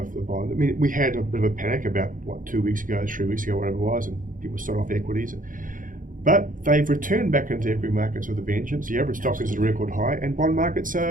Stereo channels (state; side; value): late; left; 0.39 ms